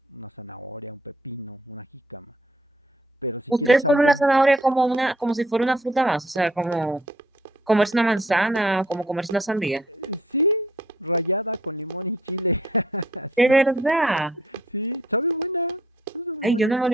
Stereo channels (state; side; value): normal; both; correlation 0.62